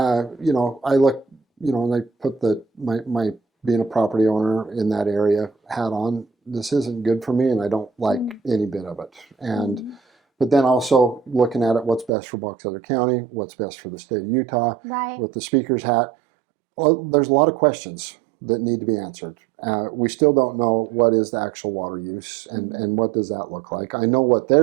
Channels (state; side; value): drops out; left; at 12.1 s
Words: And I put my being a property owner in that area hat on. This isn't good for me, and I don't like any bit of it. And but then also looking at it, what's best for Box Elder County, what's best for the state of Utah, right. with the speaker's hat. Well, there's a lot of questions that need to be answered. We still don't know what is the actual water use and what does that look like. I know what